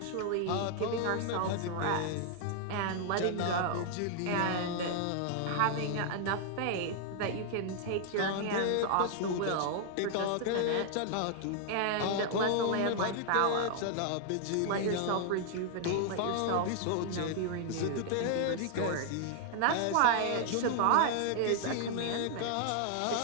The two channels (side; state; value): both; different; correlation -0.01